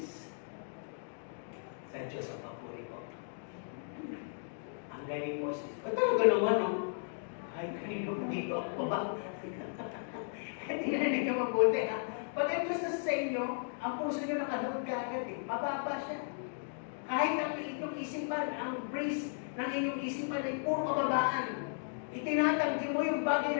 sa Diyos ang papuri ko. Ang galing mo, sis. At talaga naman, no? Ay, kanino ko dito ako ba? Tingnan ninyo mabuti, ha? Pag ang Diyos na sa inyo, ang puso nyo nakanood ka agad, eh. Mababa siya. Kahit ang inyong isipan, ang breeze ng inyong isipan ay puro kababaan. Itinatanggi mo yung bagay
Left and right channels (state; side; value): silent; right; digital silence